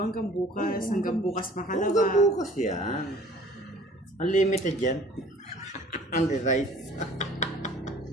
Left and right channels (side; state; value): both; normal; correlation 0.51